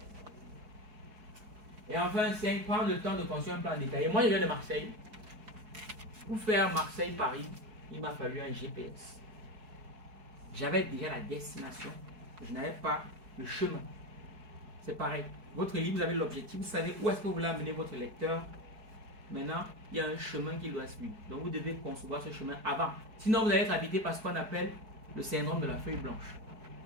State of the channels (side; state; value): left; late; 4.7 ms